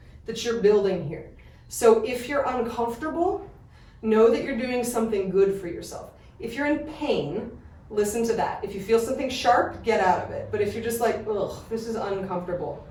that you're building here. So if you're uncomfortable, know that you're doing something good for yourself. If you're in pain, Listen to that. If you feel something sharp, get out of it. But if you're just like, ugh, this is uncomfortable,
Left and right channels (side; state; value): both; identical; correlation 1.00